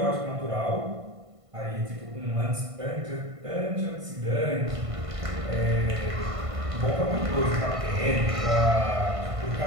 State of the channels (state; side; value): late; left; 1.5 ms